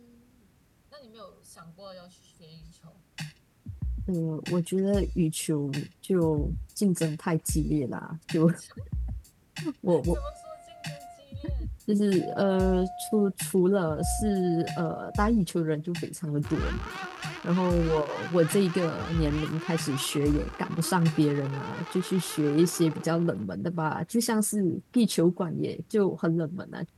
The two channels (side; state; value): both; identical; correlation 1.00